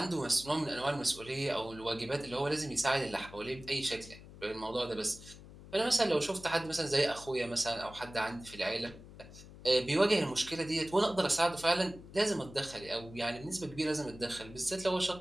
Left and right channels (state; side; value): noise; left; hum, 17 dB below the sound